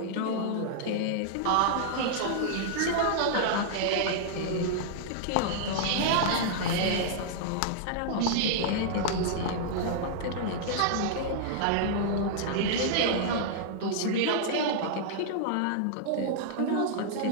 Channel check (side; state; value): both; different; correlation -0.01